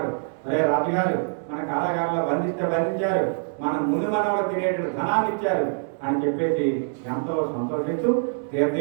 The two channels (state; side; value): silent; left; digital silence